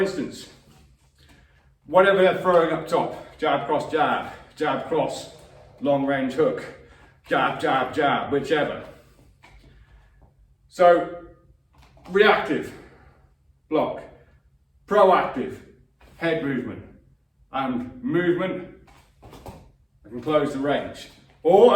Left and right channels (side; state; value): both; identical; correlation 1.00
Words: whatever they're throwing up top, jab cross jab, jab cross, long range hook, jab, jab, jab, whichever. So reactive, block, proactive, head movement, and movement, I can close the range.